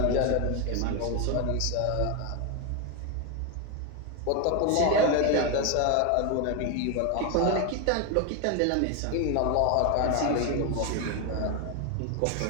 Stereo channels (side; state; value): both; different; correlation 0.01